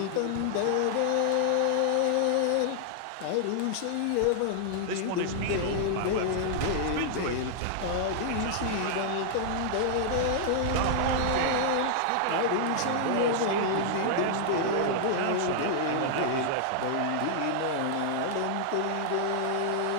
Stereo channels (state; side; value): different; both; correlation -0.01